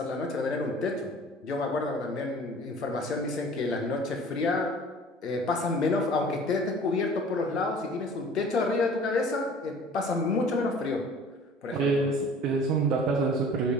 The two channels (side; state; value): both; normal; correlation 0.47